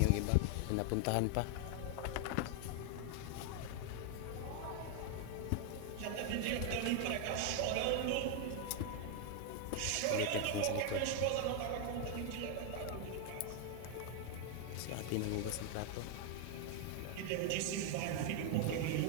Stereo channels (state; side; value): different; both; correlation 0.00